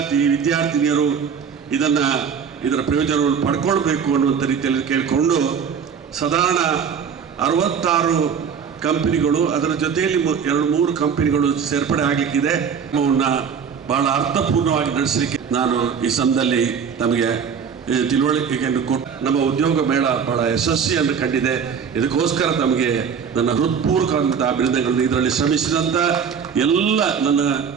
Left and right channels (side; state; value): left; quieter; 6.9 dB